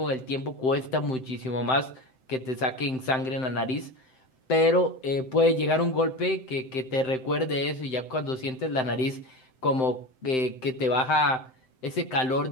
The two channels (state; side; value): late; right; 7.7 ms